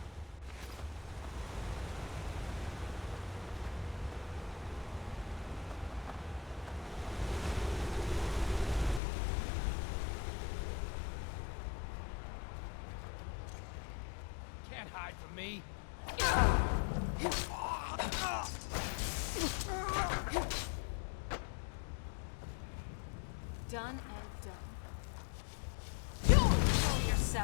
Can't hide from me. Done and done. Control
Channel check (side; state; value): right; drops out; at 9.0 s